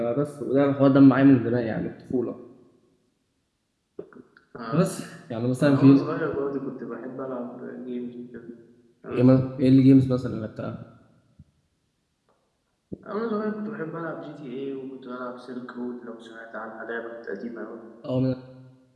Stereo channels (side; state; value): both; identical; correlation 1.00